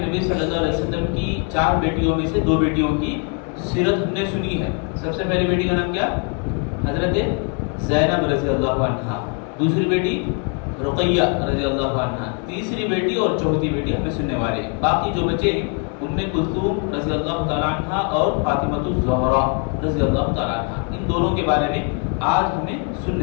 نبی صلی اللہ علیہ وسلم کی 4 بیٹیوں میں سے 2 بیٹیوں کی سیرت ہم نے سنی ہے. سب سے پہلی بیٹی کا نام کیا؟ حضرت زینب رضی اللہ عنہا. دوسری بیٹی رقیہ رضی اللہ عنہا. تیسری بیٹی اور چوتھی بیٹی ہمیں سننے والے ہیں. باقی جو بچے ہیں ام کلثوم رضی اللہ تعالیٰ عنہ اور فاطمہ الزہرا رضی اللہ تعالیٰ عنہ. ان دونوں کے بارے میں آج ہمیں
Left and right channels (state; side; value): quieter; right; 39.7 dB